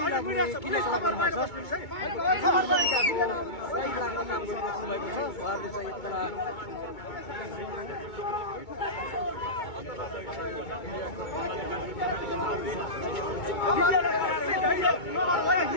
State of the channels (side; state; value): right; late; 2.2 ms